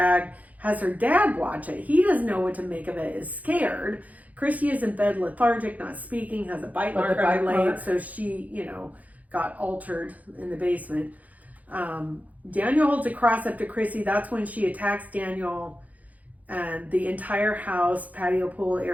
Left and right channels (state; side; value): late; left; 0.076 ms